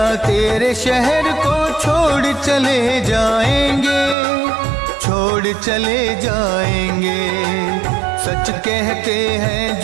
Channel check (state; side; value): drops out; left; at 4.2 s